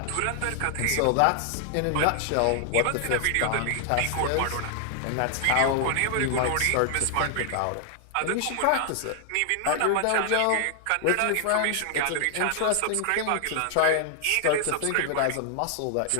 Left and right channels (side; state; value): both; different; correlation 0.00